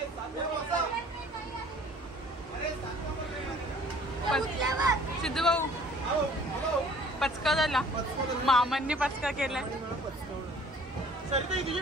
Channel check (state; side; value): normal; both; correlation 0.53